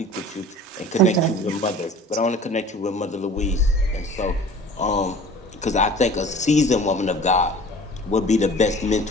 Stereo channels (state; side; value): normal; both; correlation 0.44